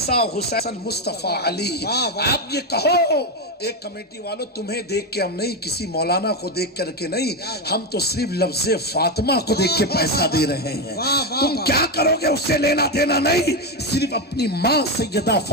حسین مصطفیٰ علی. آپ یہ کہو ایک کمیٹی والوں تمہیں دیکھ کے ہم نہیں, کسی مولانا کو دیکھ کر کے نہیں, ہم تو صرف لفظ فاطمہ کو دیکھ کے پیسہ دے رہے ہیں. تم کیا کرو گے اس سے لینا دینا نہیں, صرف اپنی ماں سیدہ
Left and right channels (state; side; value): normal; both; correlation 0.10